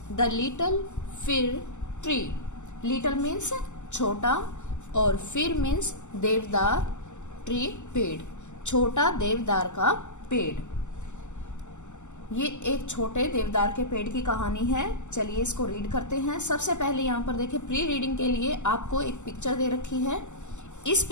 द लिटिल फिर ट्री, लिटिल मीन्स छोटा और फिर मीन्स देवदार, ट्री पेड़, छोटा देवदार का पेड़। ये एक छोटे देवदार के पेड़ की कहानी है। चलिए इसको रीड करते हैं। सबसे पहले यहाँ पर देखिए, प्री रीडिंग के लिए आपको एक पिक्चर दे रखी है। इस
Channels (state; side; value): late; right; 0.84 ms